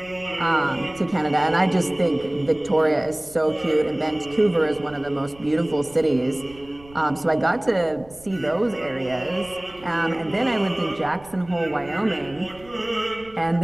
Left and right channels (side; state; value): right; noise; rumble, 23 dB below the sound